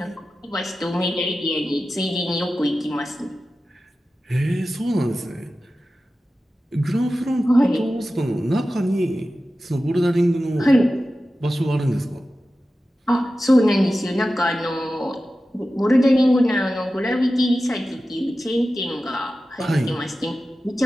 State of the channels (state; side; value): normal; both; correlation 0.94